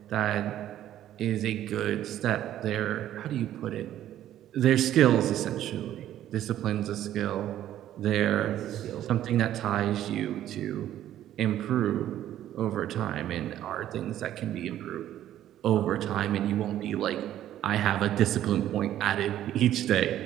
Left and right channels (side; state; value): left; quieter; 12.2 dB